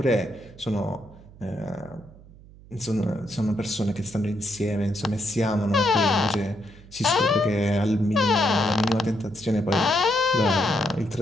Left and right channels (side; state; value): right; noise; hum, 21 dB below the sound